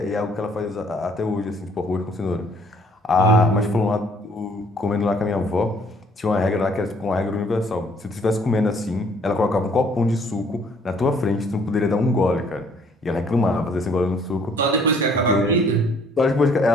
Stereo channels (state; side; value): normal; both; correlation 0.61